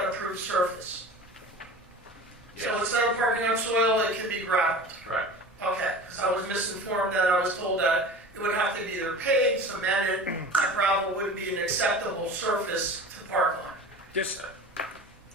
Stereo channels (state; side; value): normal; both; correlation 0.36